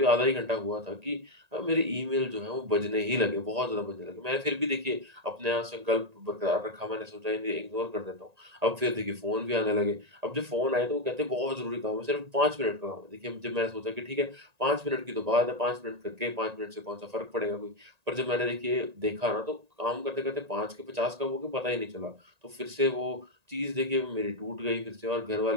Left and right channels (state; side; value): late; left; 1.9 ms